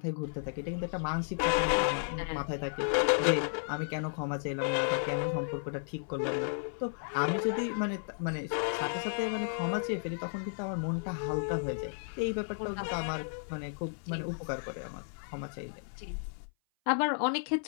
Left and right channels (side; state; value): right; silent; 56 dB below the other